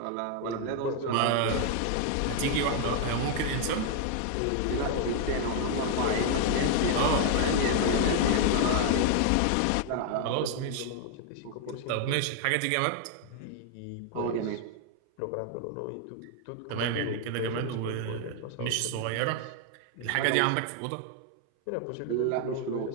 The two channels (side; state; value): both; different; correlation 0.00